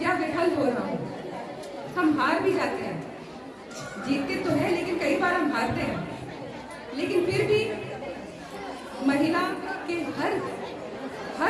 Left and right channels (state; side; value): identical; both; correlation 1.00